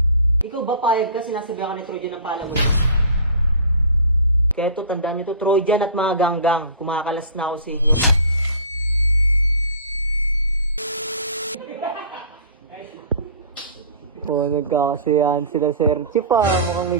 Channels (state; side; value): inverted; both; correlation -0.42